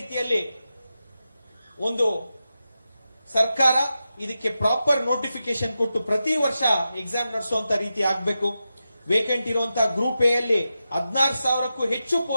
ಒಂದು ಸರ್ಕಾರ ಇದಕ್ಕೆ ಪ್ರಾಪರ್ ನೋಟಿಫಿಕೇಶನ್ ಕೊಟ್ಟು ಪ್ರತಿ ವರ್ಷ ಎಕ್ಸಾಮ್ ನಡೆಸುವಂತ ರೀತಿ ಆಗ್ಬೇಕು. ವೇಕೆಂಟ್ ಇರುವಂತಹ ಗ್ರೂಪ್ ಎ ಅಲ್ಲಿ 16,000ಕ್ಕೂ ಹೆಚ್ಚು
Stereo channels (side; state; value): both; inverted; correlation -0.91